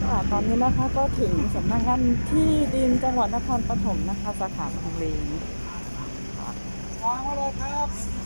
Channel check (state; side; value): inverted; both; correlation -1.00